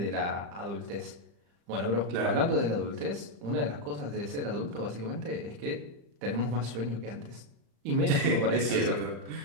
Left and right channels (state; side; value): late; left; 35 ms